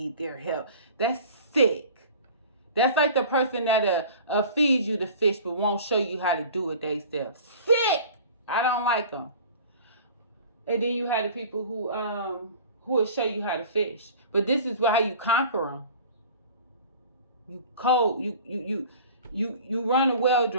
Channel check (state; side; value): inverted; both; correlation -0.42